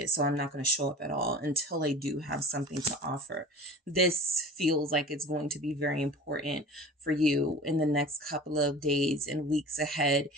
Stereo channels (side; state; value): both; normal; correlation 0.38